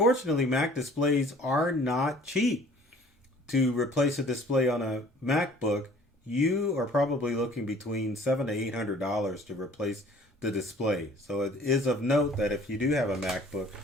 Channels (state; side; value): normal; both; correlation 0.52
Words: Mac displays are not cheap. To replace a display on a MacBook, you are probably looking between $700 to $800 to replace the display. So it is of note that if you do have a MacBook,